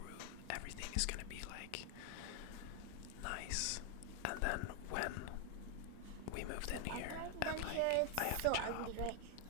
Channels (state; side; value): different; both; correlation 0.00